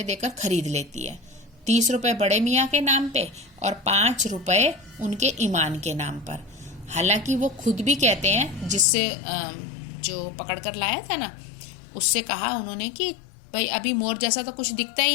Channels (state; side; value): drops out; right; at 8.8 s